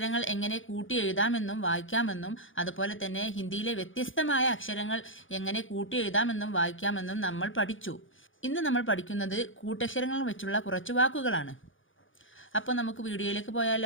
എങ്ങനെ കൂട്ടി എഴുതാമെന്നും വായിക്കാമെന്നും അതുപോലെ തന്നെ ഹിന്ദിയിലെ വ്യത്യസ്തമായ അക്ഷരങ്ങൾ എങ്ങനെ കൂട്ടി എഴുതാമെന്നും വായിക്കാമെന്നും നമ്മൾ പഠിച്ചു. ഇന്ന് നമ്മൾ പഠിക്കുന്നത് കൂട്ടക്ഷരങ്ങൾ വെച്ചുള്ള കുറച്ച് വാക്കുകളാണ്. അപ്പോൾ നമുക്ക് വീഡിയോയിലേക്ക്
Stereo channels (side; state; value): right; late; 0.57 ms